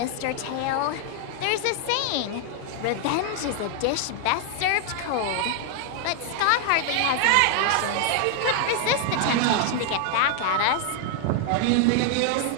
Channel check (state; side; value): different; both; correlation 0.00